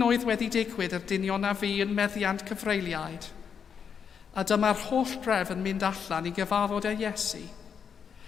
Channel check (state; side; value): quieter; right; 7.0 dB